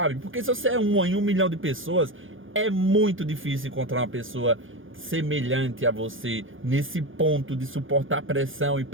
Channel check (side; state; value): left; late; 0.58 ms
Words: Porque se você é uma em 1 milhão de pessoas, é muito difícil encontrar uma pessoa semelhante a você nesse ponto de suportar pressão e